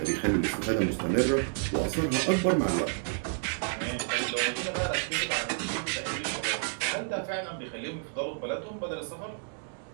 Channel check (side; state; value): left; silent; digital silence